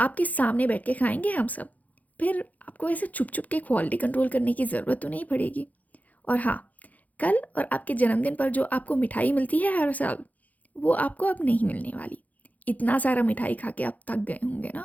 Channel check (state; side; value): late; right; 0.077 ms